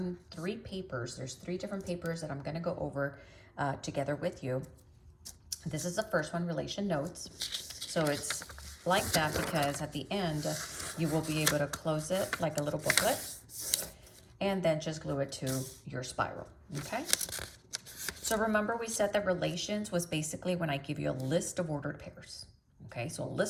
3 papers. There's 3 different papers that I'm going to go over together with you. This is the first one, relation notes. So it's like that because at the end, you will be able to close it like a little booklet and then just glue it to your spiral, okay? So remember we said that relations was basically when I give you a list of ordered pairs, okay? So a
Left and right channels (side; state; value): both; identical; correlation 1.00